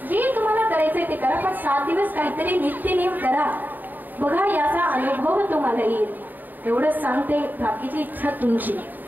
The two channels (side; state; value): left; late; 0.088 ms